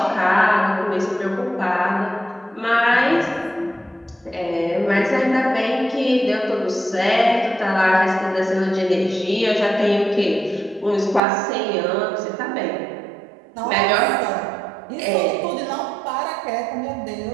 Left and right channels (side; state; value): left; drops out; at 11.2 s